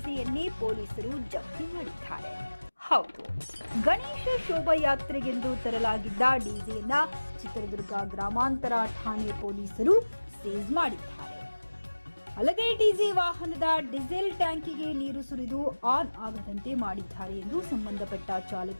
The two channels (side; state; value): both; inverted; correlation -1.00